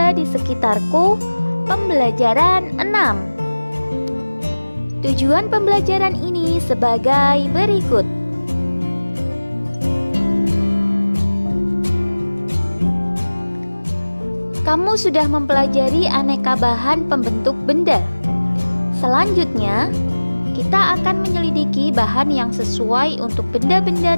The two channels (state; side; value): inverted; both; correlation -1.00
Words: di sekitarku, pembelajaran 6. Tujuan pembelajaran ini sebagai berikut. Kamu sudah mempelajari aneka bahan pembentuk benda. Selanjutnya, kita akan menyelidiki bahan yang sesuai untuk benda-benda